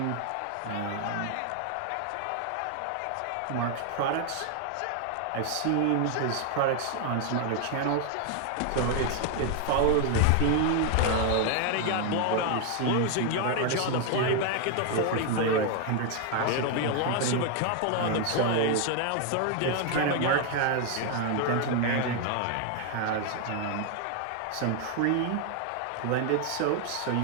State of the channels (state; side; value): different; both; correlation 0.00